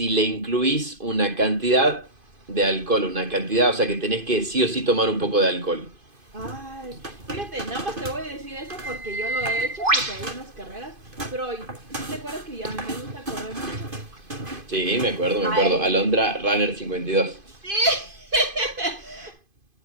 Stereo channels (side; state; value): left; late; 2.5 ms